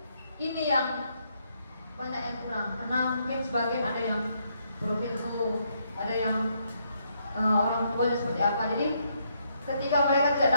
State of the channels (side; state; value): both; inverted; correlation -0.74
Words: ini yang banyak yang kurang, karena mungkin sebagian ada yang broken home, ada yang orang tuanya seperti apa. Jadi ketika mereka tidak